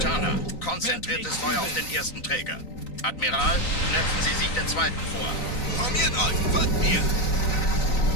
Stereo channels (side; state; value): right; late; 3.9 ms